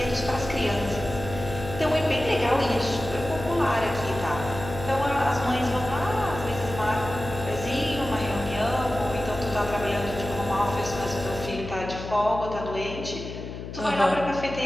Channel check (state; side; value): noise; left; hum, 9 dB below the sound